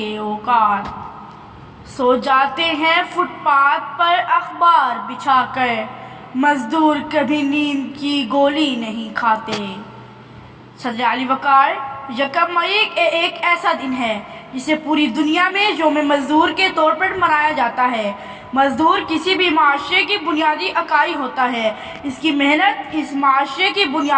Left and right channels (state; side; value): identical; both; correlation 1.00